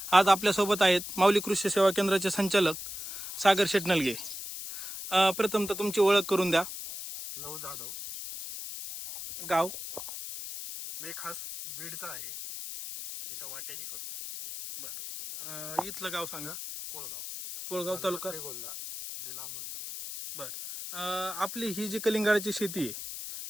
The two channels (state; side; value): noise; left; hiss, 8 dB below the sound